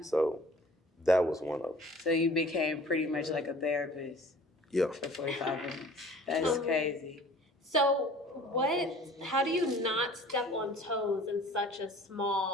that was one of them. So you became pretty much like a therapist Yeah. for 45 minutes. That's crazy. So how do you not step on toes in such a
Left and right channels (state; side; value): normal; both; correlation 0.48